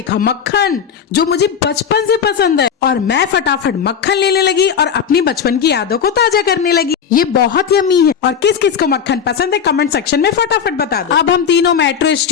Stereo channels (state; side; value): quieter; right; 7.5 dB